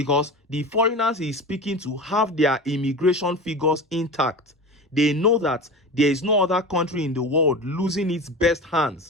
the foreigners he is speaking to have their immigration figures intact. They know that there is no other country in the world losing its best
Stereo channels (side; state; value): both; normal; correlation 0.30